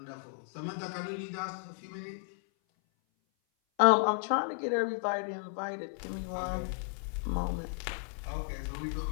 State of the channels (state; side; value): silent; right; 55 dB below the other